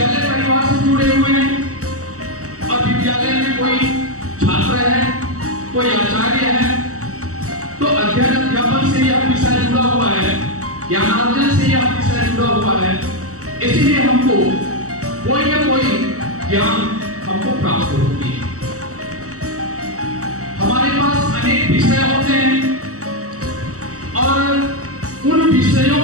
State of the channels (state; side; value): late; left; 0.65 ms